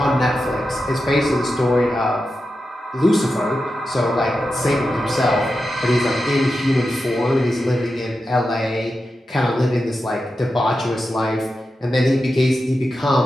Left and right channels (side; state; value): both; normal; correlation 0.90